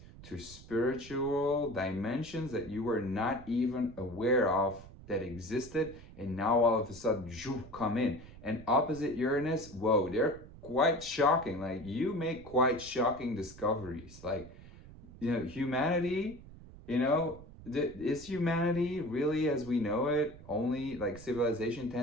to spiritual dimensions that you were not even aware of that existed, and now all of a sudden come in. And opposite Uranus, whoa, they're quite shocking. Like, you make quite shocking discoveries. Like, humanity, is humanity really as we know it only like civilization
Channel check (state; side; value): noise; right; rumble, 17 dB below the sound